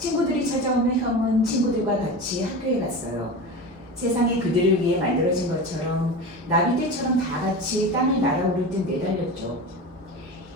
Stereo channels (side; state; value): both; normal; correlation 0.28